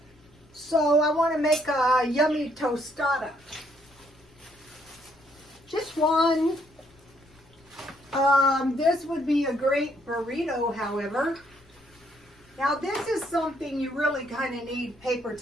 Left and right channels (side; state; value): left; noise; rumble, 29 dB below the sound